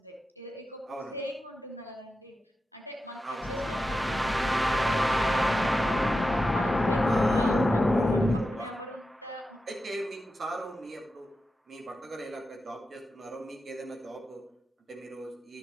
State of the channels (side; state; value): both; normal; correlation 0.90